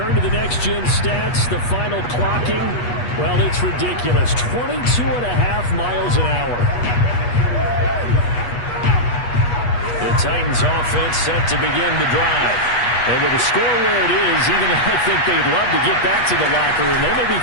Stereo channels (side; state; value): right; late; 8.3 ms